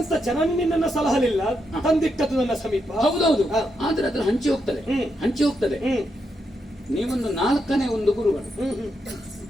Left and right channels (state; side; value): normal; both; correlation 0.82